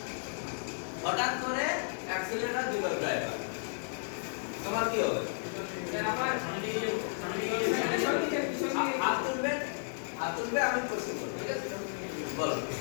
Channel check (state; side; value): silent; right; digital silence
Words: হঠাৎ করে অ্যাক্সিলারেটর দিল ড্রাইভার, তোমার কি হবে? হাত তুলবে, হাত তুলবে, আমি কোশ্চেন করব, ঠিক আছে? বলো।